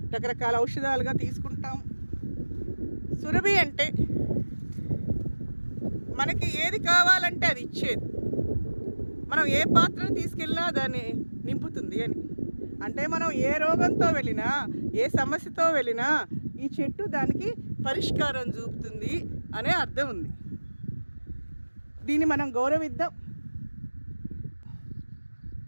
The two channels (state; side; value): inverted; both; correlation -1.00